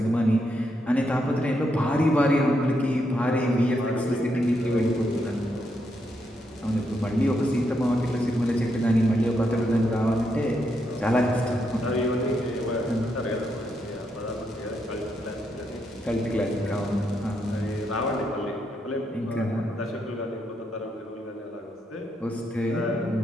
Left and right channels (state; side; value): normal; both; correlation 0.80